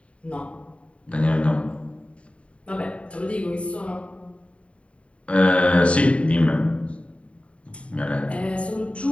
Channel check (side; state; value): right; late; 0.061 ms